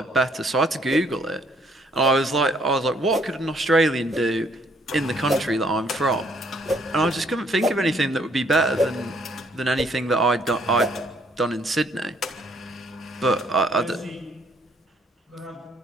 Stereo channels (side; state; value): both; normal; correlation 0.66